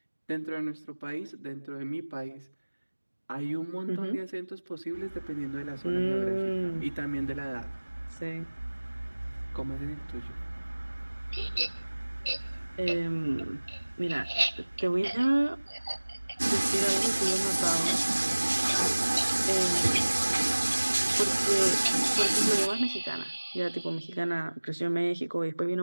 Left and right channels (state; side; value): inverted; both; correlation -1.00